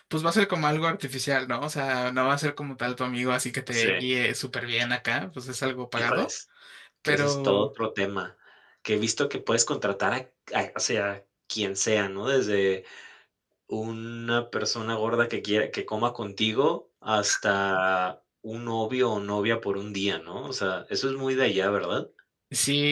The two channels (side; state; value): both; identical; correlation 1.00